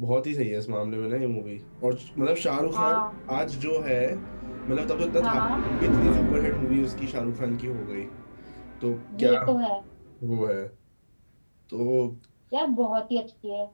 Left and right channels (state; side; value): inverted; both; correlation -1.00